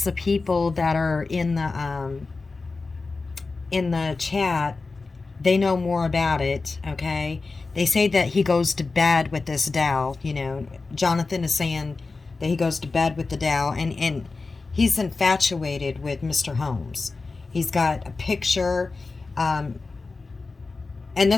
the people that are in the chat, they know more about it, okay? They say that he goes to bed with this doll, Jonathan is saying that he goes to bed with the doll, and he's infatuated with Mr. Holmes. He's got a picture, and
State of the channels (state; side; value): quieter; right; 3.9 dB